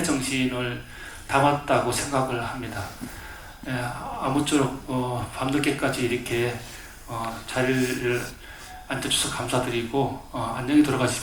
정신을 담았다고 생각을 합니다. 아무쪼록 밤늦게까지 이렇게 자리를 앉아주셔서 감사드리고 안녕히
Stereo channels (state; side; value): identical; both; correlation 1.00